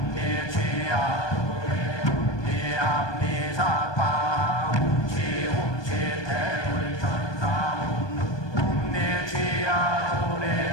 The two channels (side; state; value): right; late; 1.2 ms